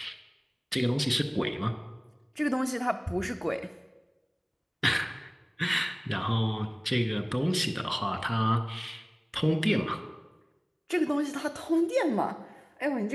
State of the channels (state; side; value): identical; both; correlation 1.00